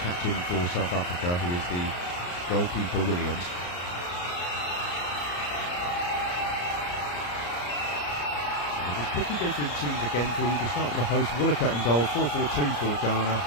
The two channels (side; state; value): right; late; 34 ms